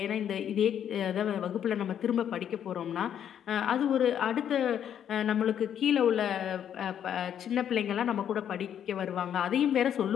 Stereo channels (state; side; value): quieter; right; 9.4 dB